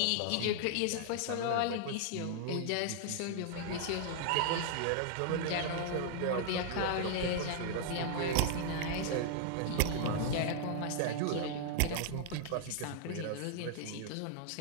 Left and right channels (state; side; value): different; both; correlation -0.01